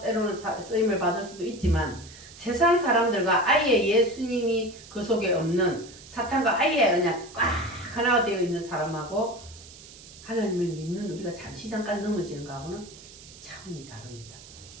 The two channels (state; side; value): noise; right; hiss, 19 dB below the sound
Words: 쓰임을 받을 수도 있지만, 세상 사람들과 아예 예수님이 그 속에 없는 사탄과 아예 그냥 꽉 하나가 되어 있는 사람하고 하나님을 믿는 우리가 잠시 잠깐 넘어지는 거하고는 차원이 다릅니다.